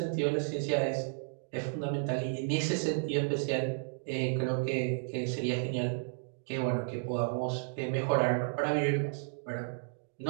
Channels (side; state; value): left; silent; digital silence